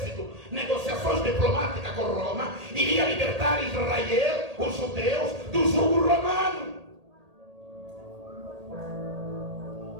negociações diplomáticas com Roma, iria libertar Israel, os judeus, do jugo romano.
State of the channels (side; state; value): left; late; 1.8 ms